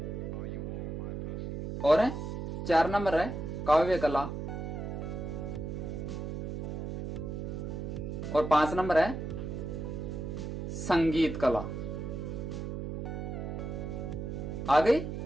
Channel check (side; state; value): right; noise; hum, 5 dB below the sound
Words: और 4 नंबर है काव्य कला, और 5 नंबर है संगीत कला। आ गई